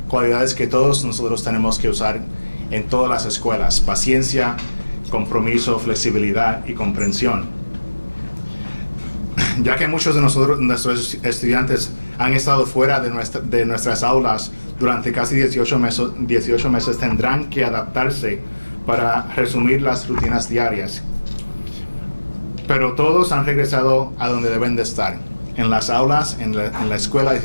cualidades que todos nosotros tenemos que usar en todas las escuelas: paciencia, compromiso, flexibilidad y comprensión. Ya que muchos de nuestros estudiantes han estado fuera de nuestras aulas durante casi 18 meses, tendrán que adaptarse para resumir las rutinas diarias. Pero todos han regresado a donde deben de estar, en las aulas, en la escuela,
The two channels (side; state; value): both; inverted; correlation -1.00